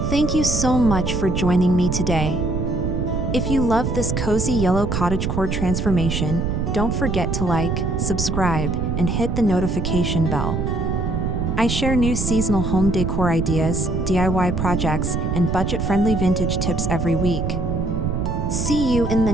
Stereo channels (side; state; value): right; noise; rumble, 1 dB below the sound